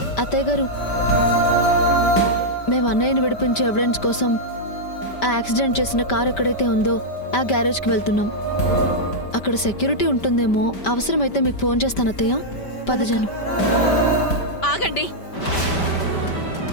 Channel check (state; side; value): late; right; 5.1 ms